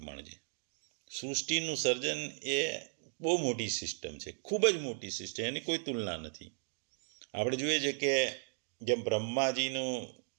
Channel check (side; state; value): left; silent; digital silence